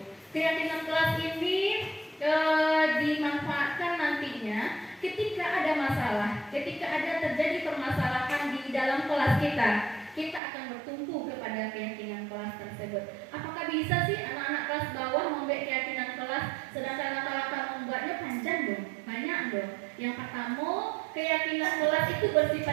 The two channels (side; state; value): left; drops out; at 10.4 s